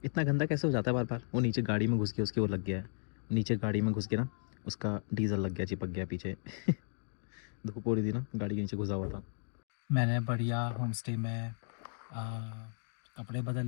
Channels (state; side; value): silent; right; digital silence